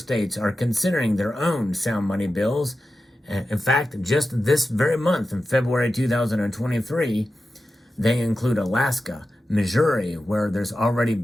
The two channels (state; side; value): normal; both; correlation 0.92